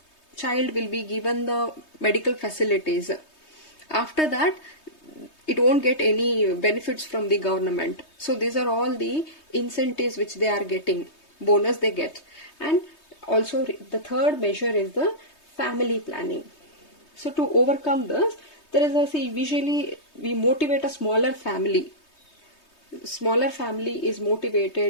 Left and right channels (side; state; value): right; late; 3.2 ms